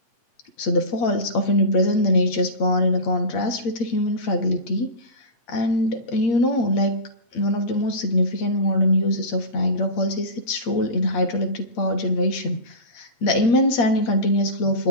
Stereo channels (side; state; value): right; late; 8.5 ms